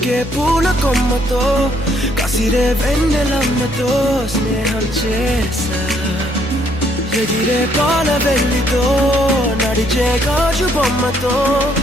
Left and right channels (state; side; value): normal; both; correlation 0.68